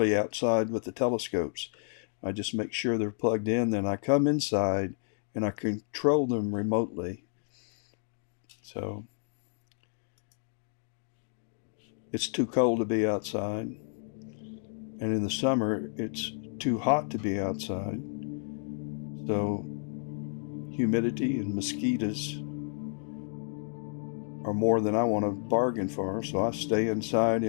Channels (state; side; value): silent; right; 57 dB below the other